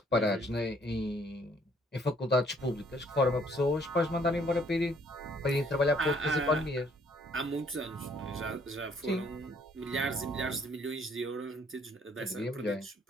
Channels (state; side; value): normal; both; correlation 0.63